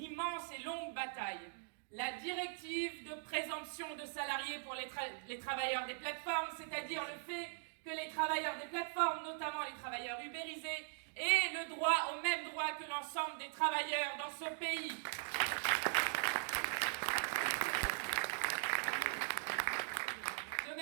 immense et longue bataille la directive de présomption de salariés pour les travailleurs des plateformes, c'est-à-dire le fait que les travailleurs des plateformes, notamment les travailleurs ubérisés, aient le droit au même droit que l'ensemble des travailleurs dans ce pays. De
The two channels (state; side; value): silent; left; digital silence